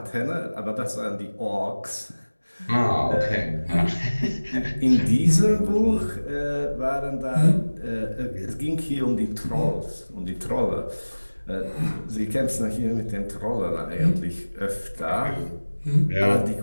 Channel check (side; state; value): both; inverted; correlation -1.00